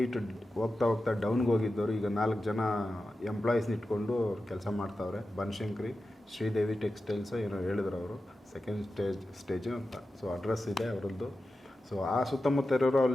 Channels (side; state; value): both; normal; correlation 0.92